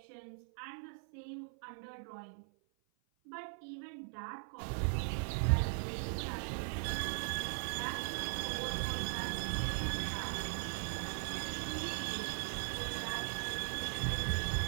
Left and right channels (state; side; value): silent; left; 52 dB below the other